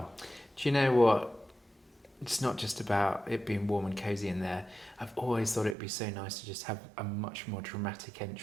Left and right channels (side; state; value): left; drops out; at 5.8 s